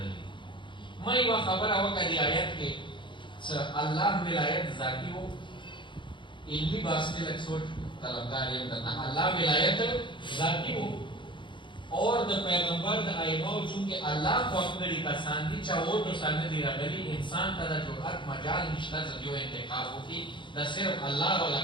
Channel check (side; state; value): right; late; 0.23 ms